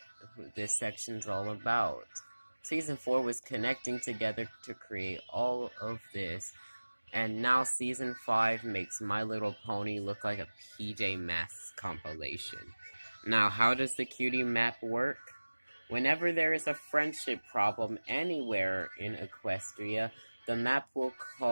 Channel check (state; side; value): inverted; both; correlation -1.00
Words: this section's all about. Season 4 was connecting together to create all of this, and now Season 5 makes My Little Pony look like a PJ Masks compilation. Now, how does the Cutie Map work? Whenever there is a friendship problem anywhere in Equestria, the map will